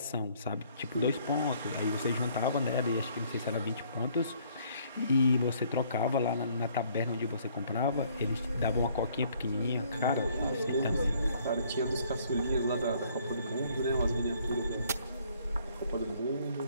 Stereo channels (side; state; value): both; inverted; correlation -0.63